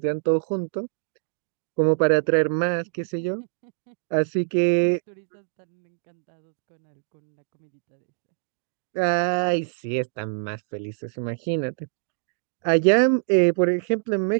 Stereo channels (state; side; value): silent; left; digital silence